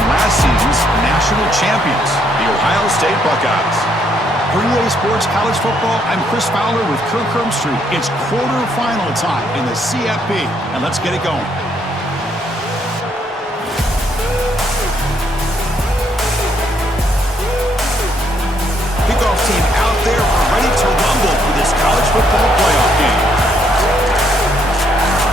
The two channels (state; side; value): normal; both; correlation 0.71